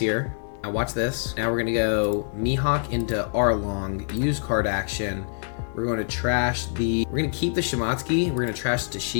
Now watch this. Now we're going to go Mihawk into Arlong, use card action. We're going to we're going to keep the Shimatsuki, we're going to trash the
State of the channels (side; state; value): right; silent; 60 dB below the other